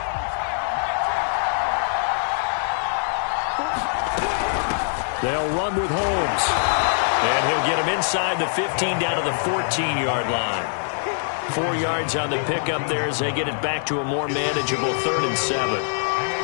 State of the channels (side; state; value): right; silent; 61 dB below the other